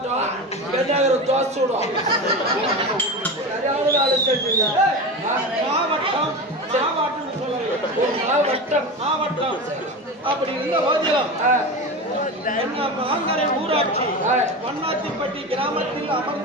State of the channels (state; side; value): normal; both; correlation 0.25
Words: பெண்ணாகர தோசூடம் மாவட்டம் மாவட்டம் மாவட்டம் அப்படி இருந்த போதிலும் மாங்கரை ஊராட்சி மண்ணாத்திப்பட்டி கிராமத்தில்